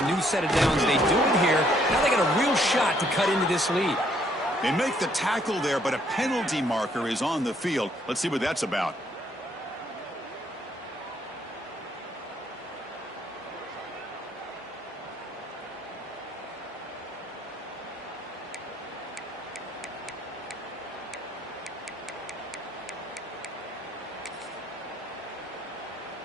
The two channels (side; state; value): both; normal; correlation 0.67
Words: new set of downs. They do it here. Now they got a real shot to cut into this lead. They make the tackle there, but a penalty marker is on the field. Let's see what that's about.